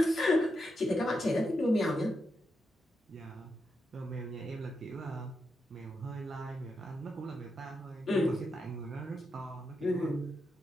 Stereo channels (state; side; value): normal; both; correlation 0.85